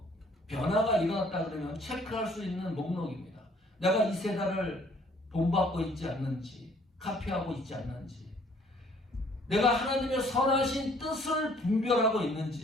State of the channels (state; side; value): normal; both; correlation 0.60